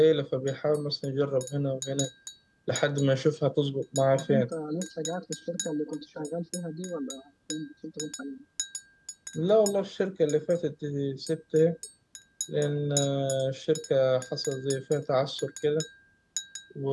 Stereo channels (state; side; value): identical; both; correlation 1.00